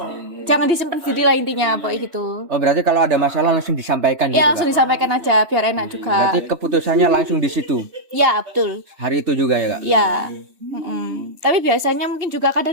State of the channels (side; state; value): left; late; 3.1 ms